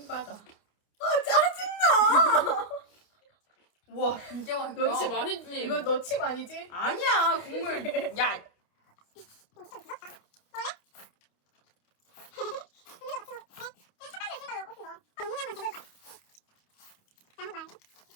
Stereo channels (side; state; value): right; late; 29 ms